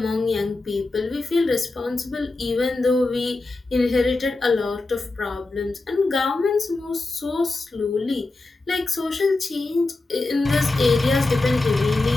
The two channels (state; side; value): quieter; right; 3.2 dB